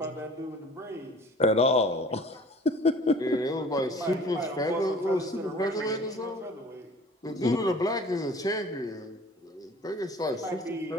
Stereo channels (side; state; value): both; normal; correlation 0.48